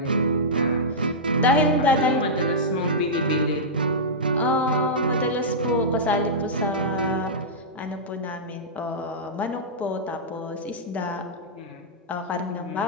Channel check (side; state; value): both; normal; correlation -0.12